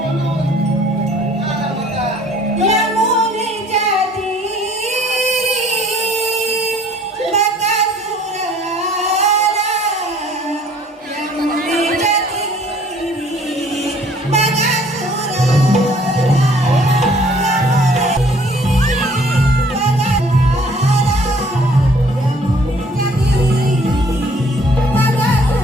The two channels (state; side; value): normal; both; correlation 0.57